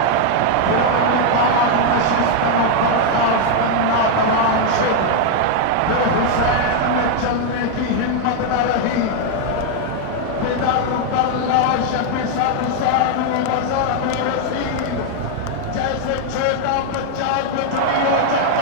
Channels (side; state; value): both; different; correlation 0.00